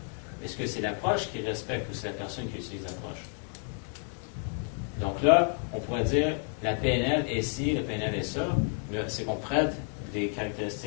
mais est-ce que c'est l'approche qui respecte ou c'est la personne qui utilise l'approche? Donc là, on pourrait dire la PNL est ci, la PNL est ça, mais c'est qu'on prête des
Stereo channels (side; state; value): right; quieter; 39.6 dB